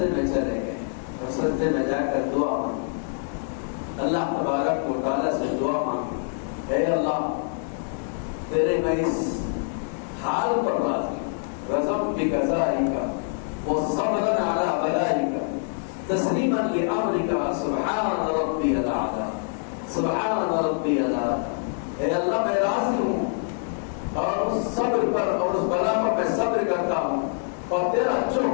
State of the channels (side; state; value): right; silent; digital silence